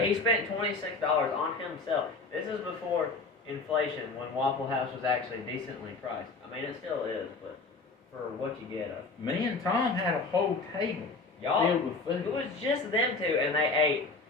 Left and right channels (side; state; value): right; quieter; 3.8 dB